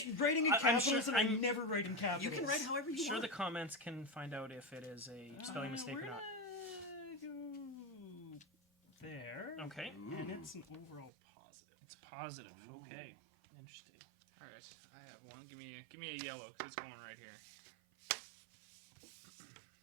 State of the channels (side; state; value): left; drops out; at 11.1 s